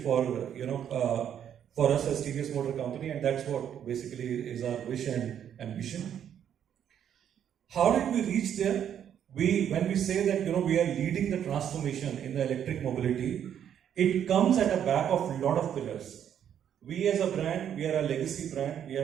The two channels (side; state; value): left; quieter; 9.3 dB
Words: for us as TVS Motor Company, and that's what basically is our wish and ambition. How did we reach there? When we say that we are leading the transformation in the electric mobility, it comes at the back of a lot of pillars. We as a brand, we are a legacy brand. We